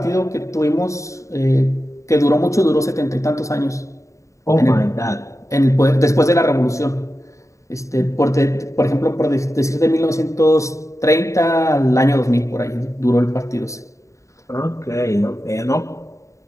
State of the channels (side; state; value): right; late; 0.15 ms